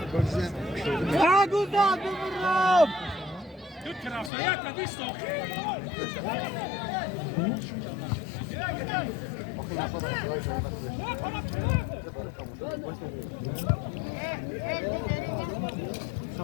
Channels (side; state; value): right; drops out; at 4.3 s